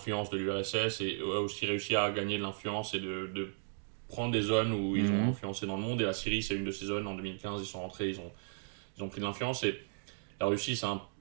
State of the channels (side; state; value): left; silent; digital silence